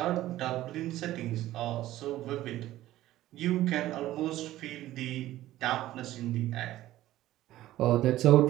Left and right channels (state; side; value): quieter; left; 14.9 dB